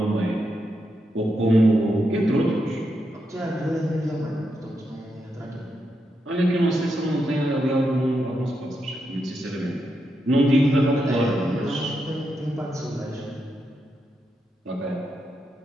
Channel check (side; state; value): both; normal; correlation 0.84